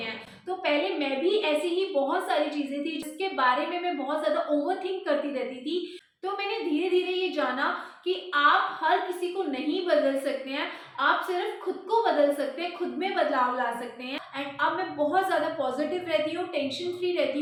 तो पहले मैं भी ऐसी ही बहुत सारी चीजें थी जिसके बारे में मैं बहुत ज्यादा ओवरथिंक करती रहती थी। तो मैंने धीरे धीरे ये जाना कि आप हर किसी को नहीं बदल सकते हैं, आप सिर्फ खुद को बदल सकते हैं, खुद में बदलाव ला सकते हैं। एंड अब मैं बहुत ज़्यादा पॉजिटिव रहती हूँ, टेंशन फ्री रहती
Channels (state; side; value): identical; both; correlation 1.00